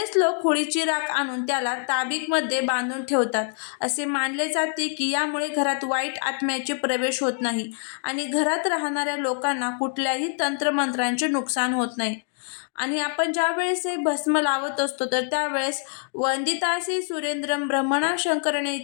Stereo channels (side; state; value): right; silent; 57 dB below the other